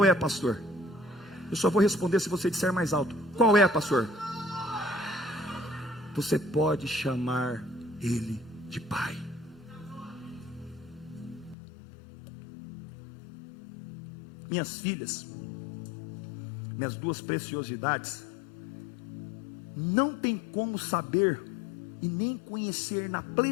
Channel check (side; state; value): right; drops out; at 11.6 s